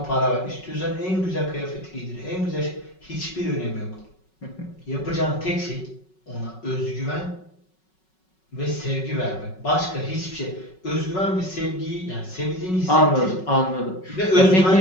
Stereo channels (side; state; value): right; late; 5.4 ms